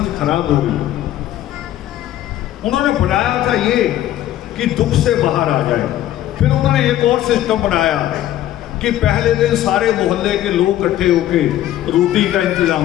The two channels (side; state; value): right; quieter; 13.0 dB